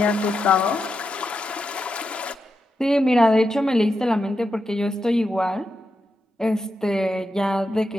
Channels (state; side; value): normal; both; correlation 0.86